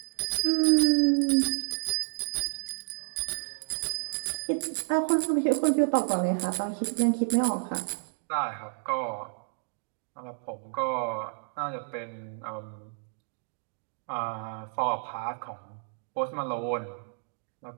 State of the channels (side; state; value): left; silent; digital silence